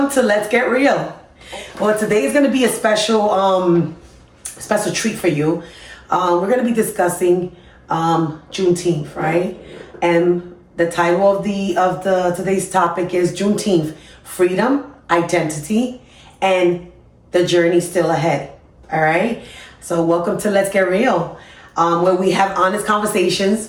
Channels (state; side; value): identical; both; correlation 1.00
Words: to Let's Get Real. Well, today is going to be a special treat for you. We're going to be discussing Juneteenth, right? And the title of the today's topic is Juneteenth: Freedom, Identity, and the Journey Still Ahead. All right. So welcome to Let's Get Real, where we have honest